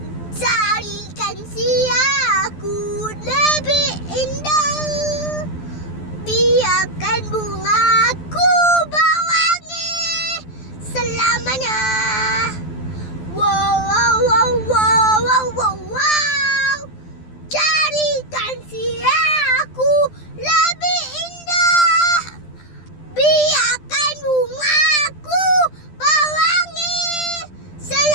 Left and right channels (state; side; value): late; right; 12 ms